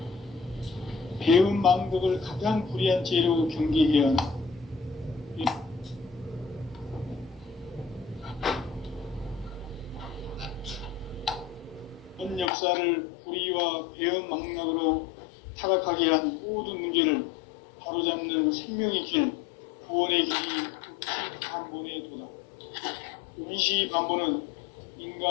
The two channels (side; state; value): right; drops out; at 12.5 s